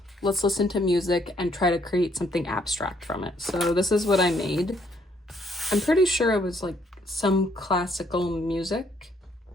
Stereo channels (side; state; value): both; normal; correlation 0.68